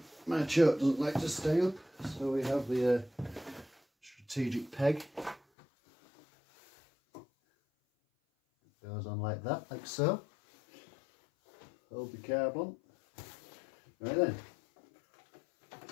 my choke doesn't like to stay up, so we have the strategic peg. It goes on like that, like so. Hold the carb on. Right then,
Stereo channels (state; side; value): drops out; right; at 5.4 s